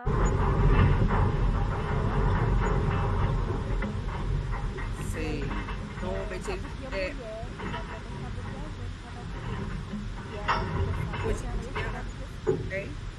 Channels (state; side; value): identical; both; correlation 1.00